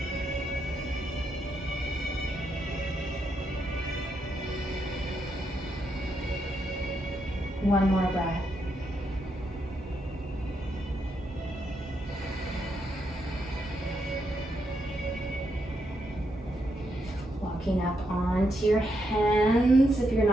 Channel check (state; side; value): normal; both; correlation 0.80